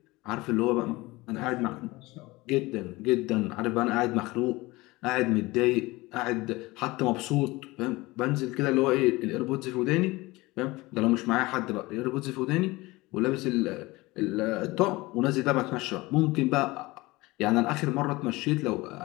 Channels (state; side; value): quieter; right; 21.3 dB